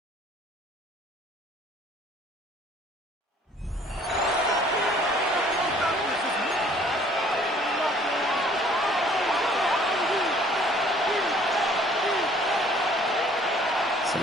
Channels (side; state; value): both; normal; correlation 0.56